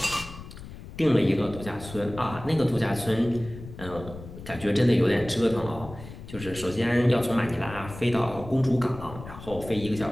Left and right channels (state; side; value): noise; left; rumble, 14 dB below the sound